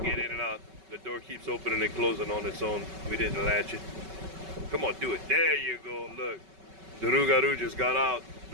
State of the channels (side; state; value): left; late; 5.3 ms